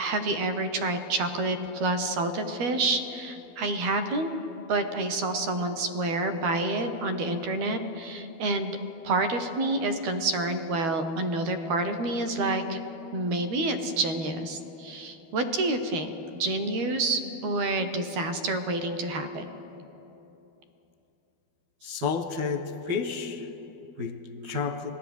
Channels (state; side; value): late; left; 12 ms